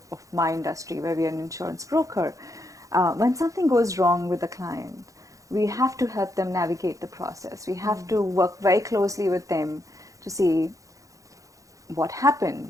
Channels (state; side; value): late; left; 0.16 ms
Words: of my industry, where we are an insurance broker. When something goes wrong with the client, we have to help them navigate the process. We have to work very closely with them to see what